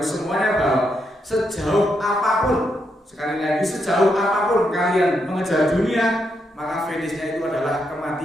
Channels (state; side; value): normal; both; correlation 0.80